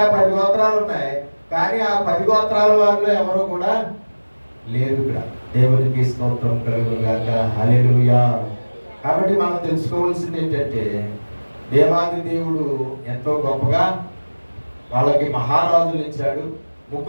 10 గోత్రాలు ఉన్నాయి, కానీ ఆ 10 గోత్రాల వారిలో ఎవరు కూడా లేరు ఇక్కడ. దేవునికి స్తోత్రం కలుగును గాక. హల్లెలూయా. కాబట్టి మనం తెలుసుకోవాల్సింది ఏంటంటే, దేవాది దేవుడు ఎంతో గొప్పగా వాళ్ళకి మహారాజులు ఇచ్చాడు.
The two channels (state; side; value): inverted; both; correlation -1.00